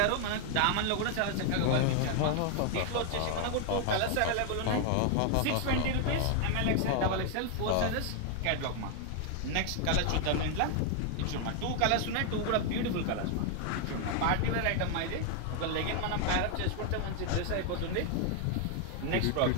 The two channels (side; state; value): both; different; correlation 0.00